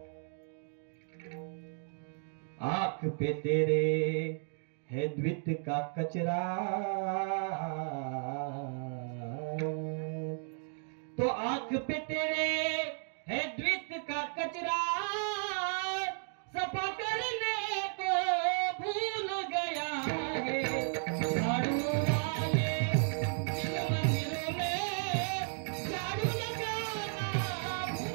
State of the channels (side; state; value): left; silent; 55 dB below the other